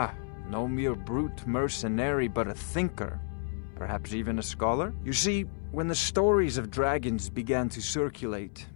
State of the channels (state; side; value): silent; right; 57 dB below the other